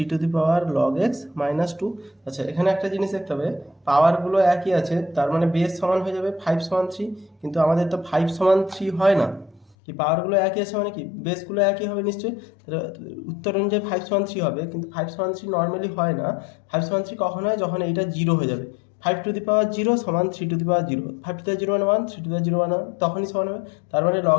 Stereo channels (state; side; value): drops out; right; at 9.8 s